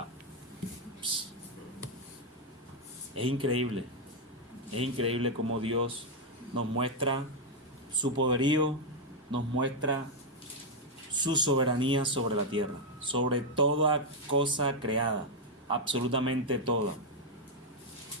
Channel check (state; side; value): normal; both; correlation 0.00